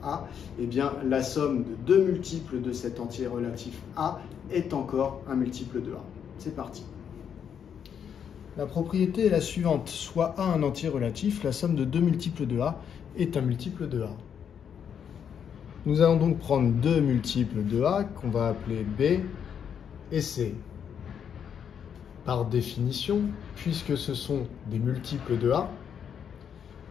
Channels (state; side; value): quieter; right; 8.0 dB